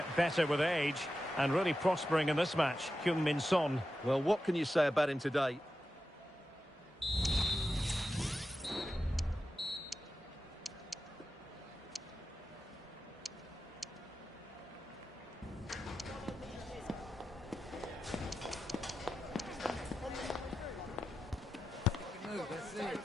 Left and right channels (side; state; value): both; normal; correlation 0.90